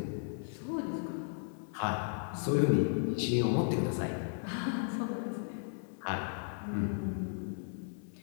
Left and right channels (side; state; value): right; silent; digital silence